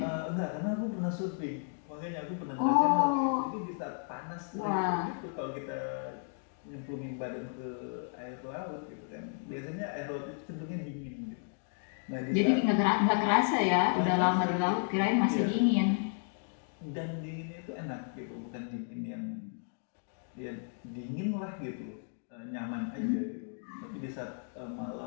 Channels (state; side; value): silent; right; 55 dB below the other